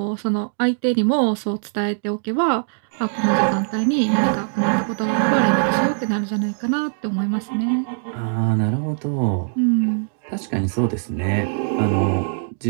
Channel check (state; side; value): silent; left; digital silence